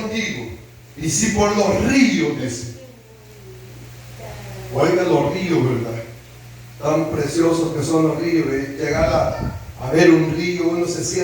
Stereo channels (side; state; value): both; identical; correlation 1.00